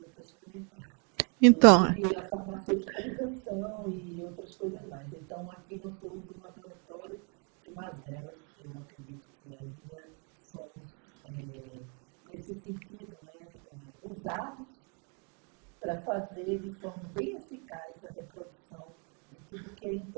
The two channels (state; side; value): quieter; left; 37.1 dB